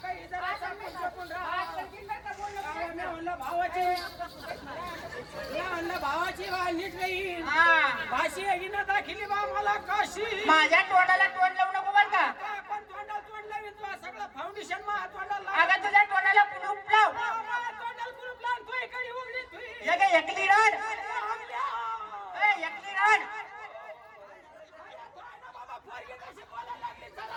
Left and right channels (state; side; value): identical; both; correlation 1.00